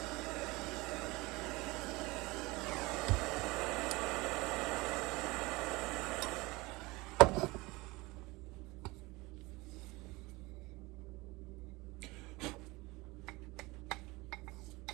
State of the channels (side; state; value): left; quieter; 22.7 dB